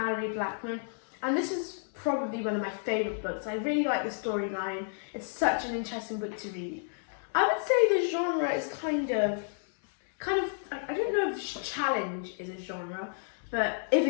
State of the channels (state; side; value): silent; right; 57 dB below the other